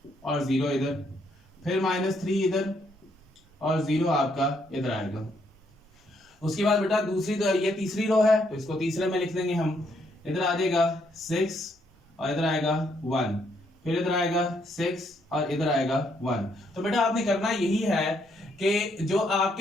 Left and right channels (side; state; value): both; normal; correlation 0.73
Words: और 0 इधर, फिर -3 इधर और 0 आपका इधर आएगा। उसके बाद बेटा दूसरी तो ये तीसरी रो है तो इसको तीसरे में लिख देंगे हम। इधर आ जाएगा 6 और इधर आएगा 1, फिर इधर आएगा 6 और इधर आएगा 1। तो बेटा आपने करना यही है कि जो